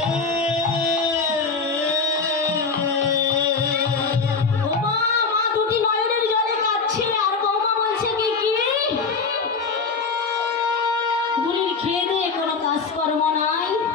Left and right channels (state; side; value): quieter; right; 4.7 dB